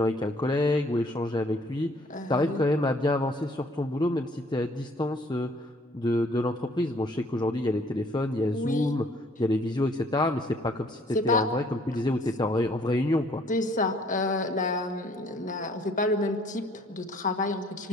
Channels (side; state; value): both; normal; correlation 0.60